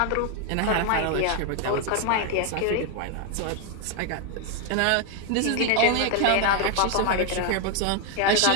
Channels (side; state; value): both; different; correlation 0.01